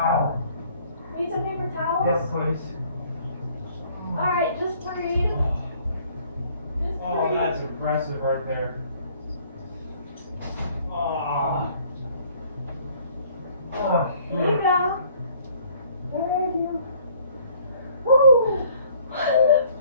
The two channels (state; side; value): inverted; both; correlation -0.58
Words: Need some paper towels? Yes, please. Alright, just breathe. Oh, that's impressive right there. Oh. Oh, Here you go. Thank you. Woo.